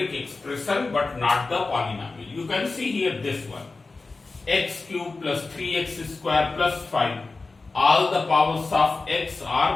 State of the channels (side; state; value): right; quieter; 3.7 dB